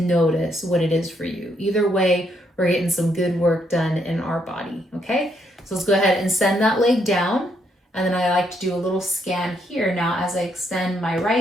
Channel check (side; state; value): both; normal; correlation 0.74